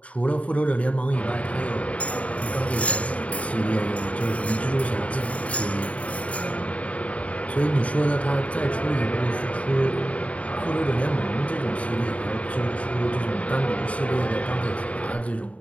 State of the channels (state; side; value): late; right; 0.066 ms